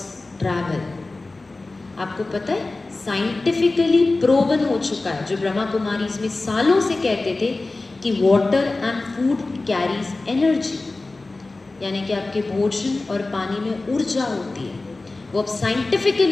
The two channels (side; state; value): right; quieter; 3.3 dB